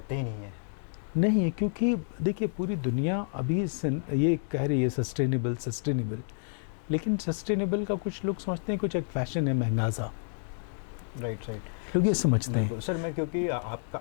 ही नहीं है। नहीं है, क्योंकि देखिए पूरी दुनिया अभी ये कह रही है सस्टेनेबल, लेकिन सस्टेनेबल का कुछ लोग समझते हैं कुछ एक फैशन है महंगा सा। राइट। लोग ये समझते हैं। सर, मैं क्योंकि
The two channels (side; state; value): right; silent; digital silence